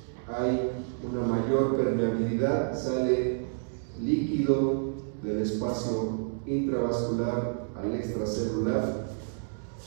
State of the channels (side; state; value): left; silent; digital silence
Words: hay una mayor permeabilidad, sale líquido del espacio intravascular al extracelular